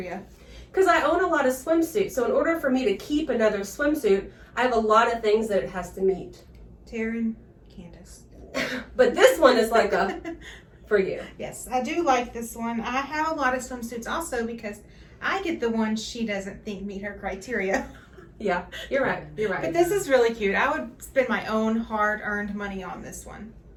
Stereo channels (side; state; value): both; identical; correlation 1.00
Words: Because I own a lot of swimsuits. So in order for me to keep another swimsuit, I have a lot of things that it has to meet. Taren, Candice. But this one is like a for you. Yes, I do like this one. I have a lot of swimsuits also because I get the ones she doesn't think meet her criteria. Yeah, you're right. You're right. But this is really cute. I would spend my own hard-earned money on this one.